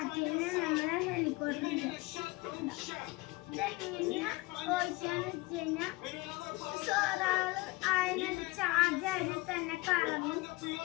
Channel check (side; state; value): right; quieter; 21.9 dB